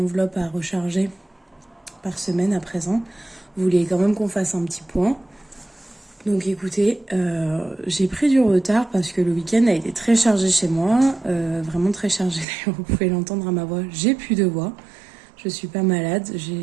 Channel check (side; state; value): left; drops out; at 12.5 s